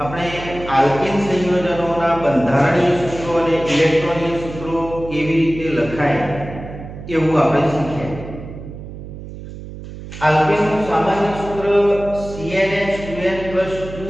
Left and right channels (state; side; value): noise; right; hum, 12 dB below the sound